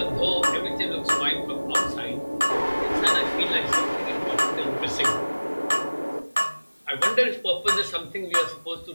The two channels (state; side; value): inverted; both; correlation -1.00